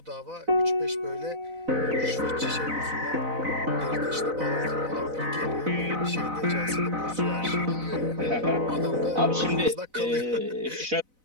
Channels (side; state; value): left; late; 4.0 ms